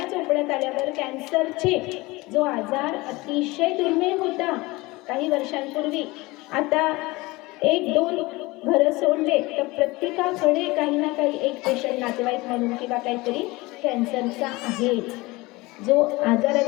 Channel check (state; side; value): quieter; right; 22.1 dB